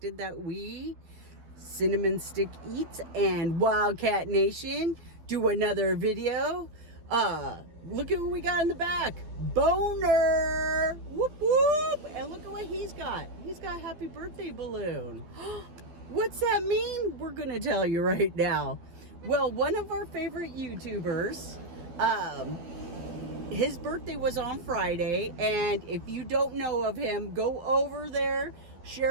that we, Cinnamon Stick Eats and WildKat-Nation, do another video. Look at what we got in the back. Boner! Whoop whoop! And look at what he's got. He's got a happy birthday balloon. What's that mean? We're gonna tell you right now. Well, one of our favorite YouTubers, his birthday was on Friday, and if you don't know of him, go over there,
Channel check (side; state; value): left; late; 12 ms